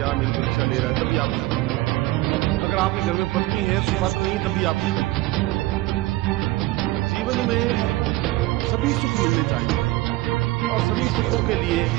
मेरी परीक्षा ले रहा है, तभी आप। अगर आपके घर में पत्नी है, सुपात्र नहीं, तभी आप। जीवन में सभी सुख मिलने चाहिए और सभी सुखों के लिए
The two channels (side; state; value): left; quieter; 18.6 dB